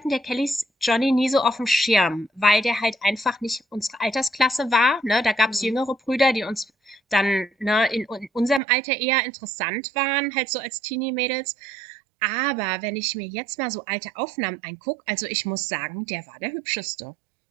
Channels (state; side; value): drops out; left; at 8.6 s